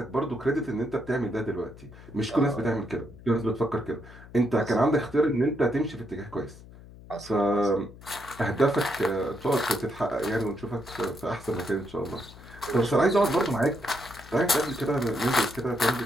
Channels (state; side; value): noise; left; hum, 19 dB below the sound